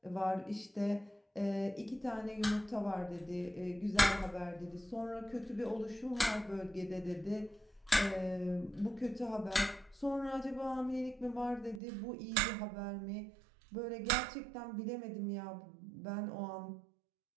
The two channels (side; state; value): left; drops out; at 11.8 s